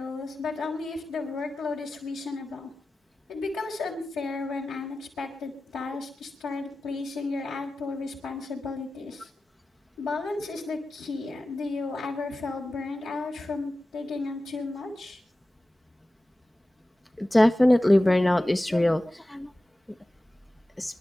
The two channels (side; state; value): both; normal; correlation 0.95